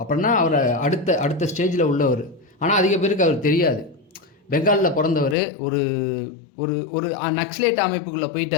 அவரை அடுத்த ஸ்டேஜில் உள்ளவர். ஆனால் அதிக பேருக்கு அவர் தெரியாது. பெங்காலில் பிறந்தவர், ஒரு ஒரு ஒரு நக்ஸலைட் அமைப்புக்குள்ளே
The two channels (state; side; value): drops out; right; at 5.4 s